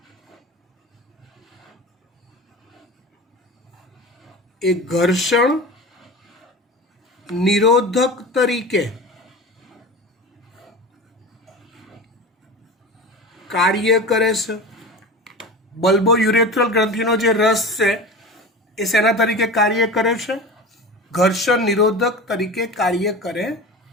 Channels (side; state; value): both; normal; correlation 0.31